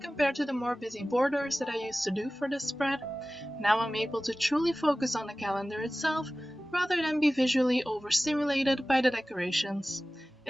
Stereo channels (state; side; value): normal; both; correlation 0.97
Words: compared to the more busy borders that I used to do for this spread. Now I'm able to truly focus on the calendar itself, rather than be visually overstimulated by the decorations.